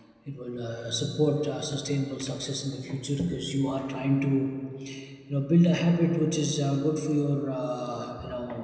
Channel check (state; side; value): identical; both; correlation 1.00